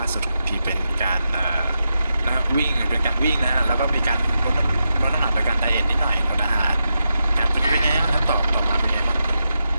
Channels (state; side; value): inverted; both; correlation -0.86